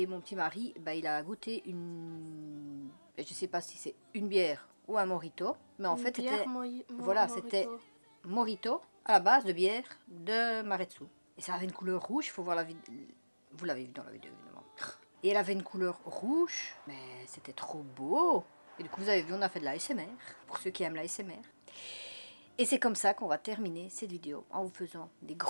mon petit mari, il a goûté une... Je sais pas si c'est une bière ou un mojito, mais en fait, c'était... Voilà, c'était mojito à la base de bière de Maretsu. Et ça avait une couleur rouge, il faut voir la vidéo. Vous l'avez vu dans la vidéo, évidemment. Et elle avait une couleur rouge, mais c'était trop beau. Et du coup, vous avez vu, on a fait de l'ASMR, pour ceux qui aiment l'ASMR. Et c'est comme ça qu'on va terminer cette vidéo, en vous faisant des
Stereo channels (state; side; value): inverted; both; correlation -1.00